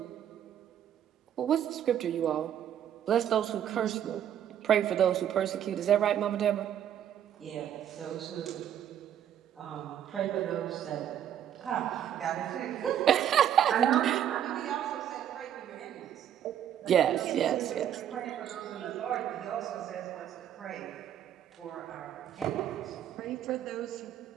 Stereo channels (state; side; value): quieter; left; 10.1 dB